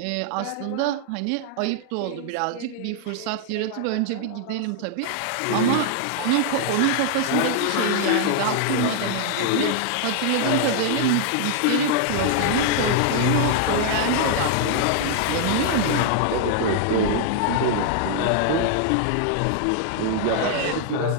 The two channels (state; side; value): different; both; correlation -0.01